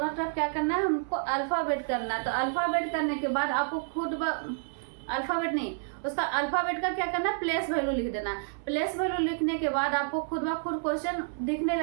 तरफ क्या करना है, हमको अल्फाबेट करना है। तो अल्फाबेट करने के बाद आपको खुद अल्फाबेट नहीं, उसका अल्फाबेट का क्या करना है, प्लेस वैल्यू लिख देना। प्लेस वैल्यू लिखने के बाद आपको खुद ब खुद क्वेश्चन दिखने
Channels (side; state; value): left; silent; 58 dB below the other